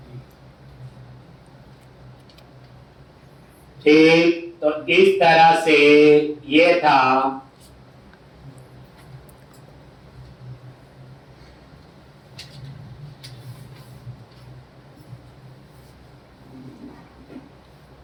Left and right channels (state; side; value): identical; both; correlation 1.00